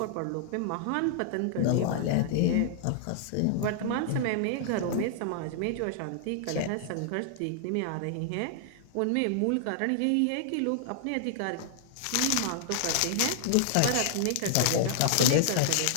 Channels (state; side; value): different; both; correlation -0.01